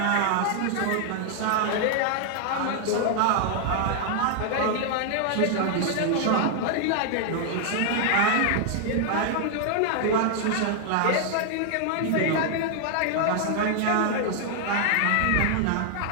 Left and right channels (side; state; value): both; different; correlation 0.00